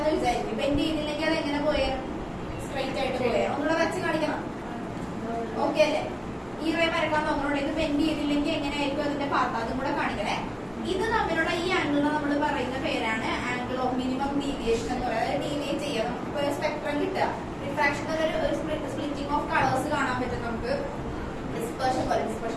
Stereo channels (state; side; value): identical; both; correlation 1.00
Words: വിചാരിക്കും. ബെൻഡ് ചെയ്തില്ലെങ്കിൽ അത് എങ്ങനെ പോയേ? സ്ട്രൈറ്റ് ആയിട്ട് പോയേ. ഒന്നുകൂടെ വരച്ച് കാണിക്കണം. ഓക്കെ അല്ലേ? ഈ റേ വരക്കാൻ നോക്കണോണ്ട് ഇത് ബെൻഡ് ചെയ്തില്ലെങ്കിൽ എങ്ങനെയായിരിക്കും അതിന്റെ പാർട്ട്, അതും കൂടെ കാണിക്കണേ. ഇത് തമ്മിലുള്ള ഈ ആംഗിളിനെ നമ്മൾ പറയുന്ന പേരാണ് ആംഗിൾ ഓഫ് മിനിമം ഡീവിയേഷൻ എന്ന് പറയുന്നത്. ഡീവിയേറ്റ് ചെയ്യാം, നമുക്ക് ഒരു സ്പെക്ട്രം കിട്ടുക. റിഫ്രാക്ഷൻ ഒരു സ്പ്ലിറ്റിംഗ് ഓഫ് കളേഴ്സ് കാണാൻ പറ്റും നമുക്ക്. ഡിസ്പെർഷൻ പോലെ,